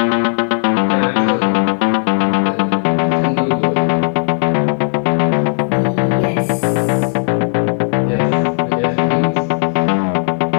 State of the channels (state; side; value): silent; right; digital silence